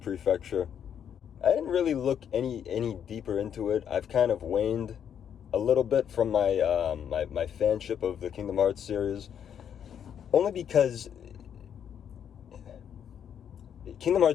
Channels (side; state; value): right; quieter; 8.7 dB